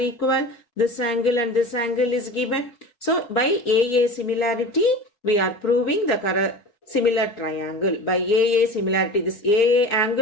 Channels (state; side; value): late; right; 4.1 ms